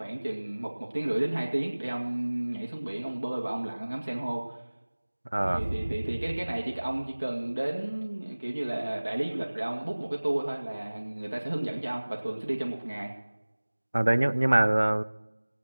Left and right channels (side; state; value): both; inverted; correlation -1.00